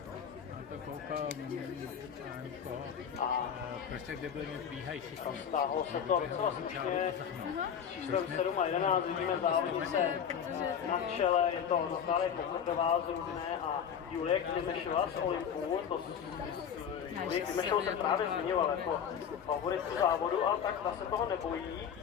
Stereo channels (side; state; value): right; quieter; 8.0 dB